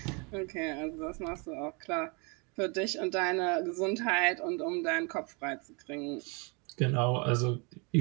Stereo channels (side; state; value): left; quieter; 32.1 dB